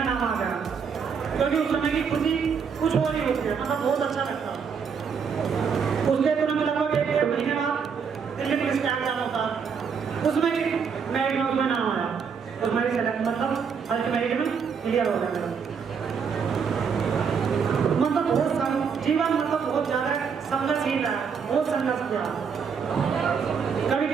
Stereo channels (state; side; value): quieter; left; 6.3 dB